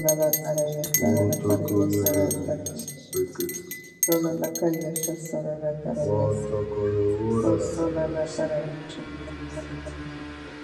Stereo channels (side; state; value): both; identical; correlation 1.00